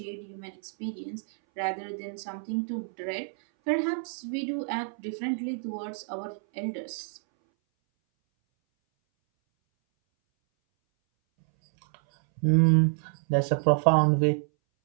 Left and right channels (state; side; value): silent; left; 59 dB below the other